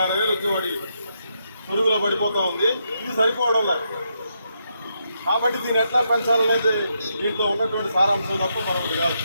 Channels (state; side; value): inverted; both; correlation -0.80